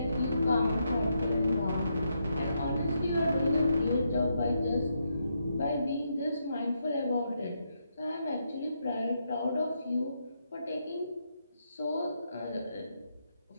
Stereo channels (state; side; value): inverted; both; correlation -0.80